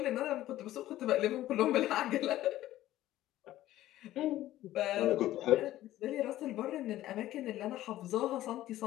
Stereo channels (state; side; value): quieter; right; 14.5 dB